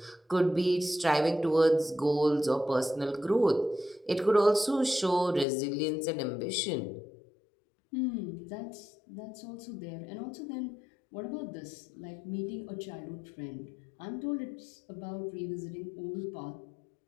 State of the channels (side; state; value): right; drops out; at 5.5 s